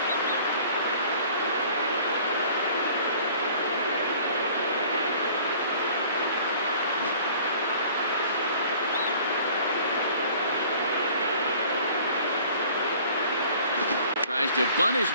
Tries to bunt his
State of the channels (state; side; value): inverted; both; correlation -0.51